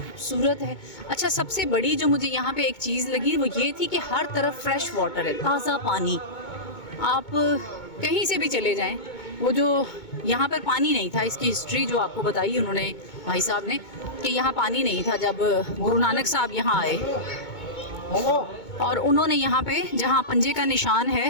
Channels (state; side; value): late; right; 2.2 ms